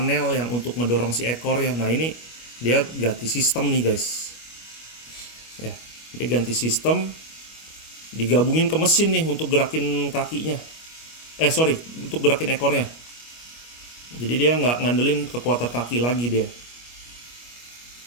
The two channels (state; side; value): late; right; 25 ms